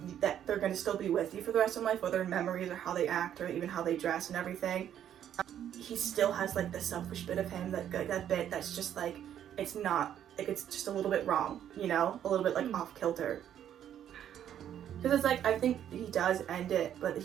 that they're going to still be with you for the rest of life, whether in memories or how they act or even how they dress and everything, he still has like the selfish bit of him, that bit that's just like it's not like, it's just a little bit wrong, you know, a little bit like off kilter, because it's like I think he does end it, but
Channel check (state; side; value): quieter; left; 10.2 dB